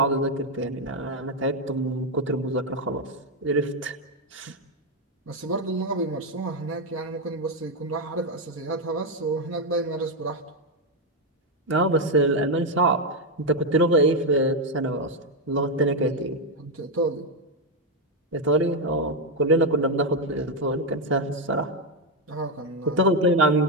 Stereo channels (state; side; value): normal; both; correlation 0.04